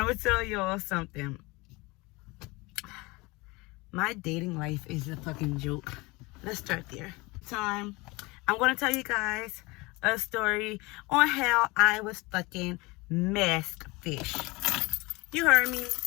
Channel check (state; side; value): quieter; right; 24.2 dB